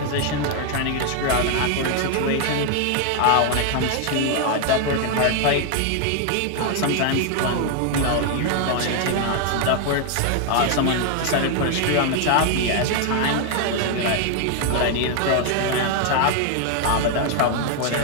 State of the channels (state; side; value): different; both; correlation 0.00